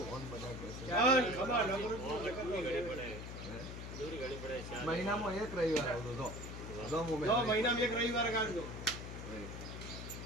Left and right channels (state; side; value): noise; left; hum, 8 dB below the sound